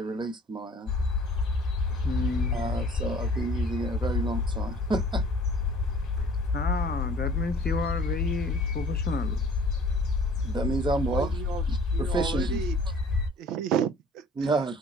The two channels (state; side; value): normal; both; correlation 0.51